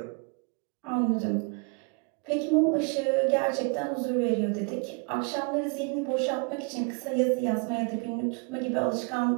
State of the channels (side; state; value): left; quieter; 34.7 dB